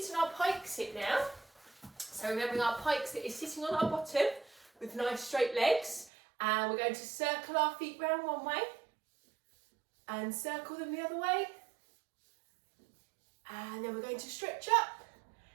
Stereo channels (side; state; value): left; drops out; at 6.1 s